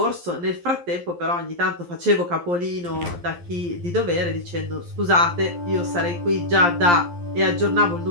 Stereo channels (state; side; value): late; left; 11 ms